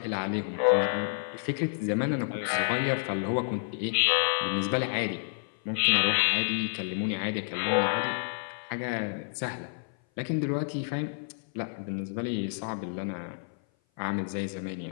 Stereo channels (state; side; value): silent; right; 56 dB below the other